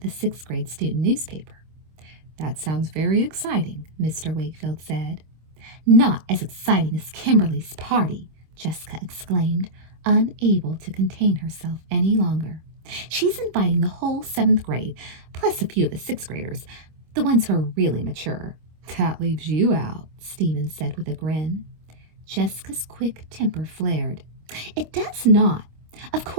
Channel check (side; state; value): left; late; 25 ms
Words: the sixth-grade student newspaper. "That sounds very exciting," Mr. Wakefield said. "Not as exciting as Kimberly's party," Jessica exclaimed, unable to contain herself any longer. "She's inviting the whole 7th grade, plus a few of the 6th graders, the ones who are really mature." "That leaves you out," Stephen said with a grin. Jessica's quick temper flared. "It does not. Of